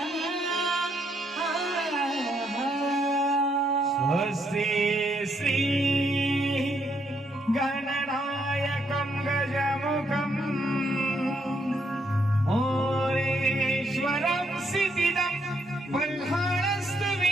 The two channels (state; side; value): normal; both; correlation 0.74